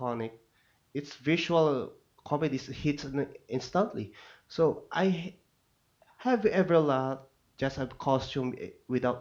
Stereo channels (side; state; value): both; identical; correlation 1.00